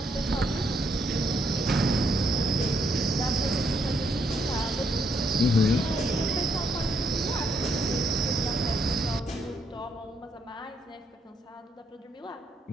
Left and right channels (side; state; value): both; normal; correlation 0.74